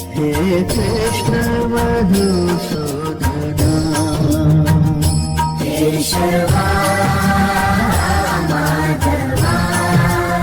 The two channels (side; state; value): both; identical; correlation 1.00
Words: hey Krishna Madhusudana Keshwa Madhava